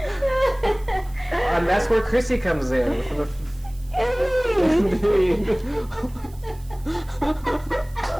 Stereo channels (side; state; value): right; noise; hiss, 26 dB below the sound